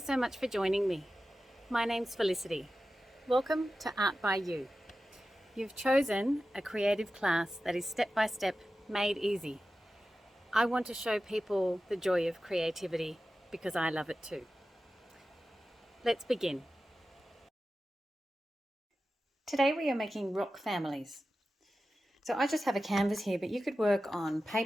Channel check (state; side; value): normal; both; correlation 0.93